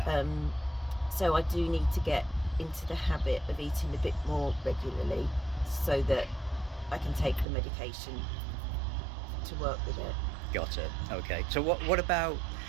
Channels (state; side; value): drops out; left; at 7.5 s